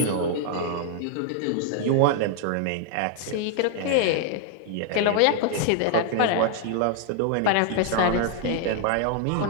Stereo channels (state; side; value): different; both; correlation 0.00